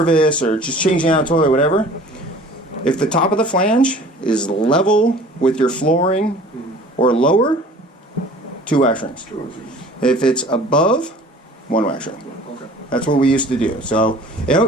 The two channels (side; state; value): both; normal; correlation 0.47